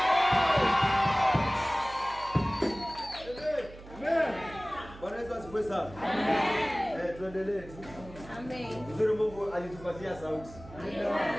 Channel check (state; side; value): noise; right; hum, 17 dB below the sound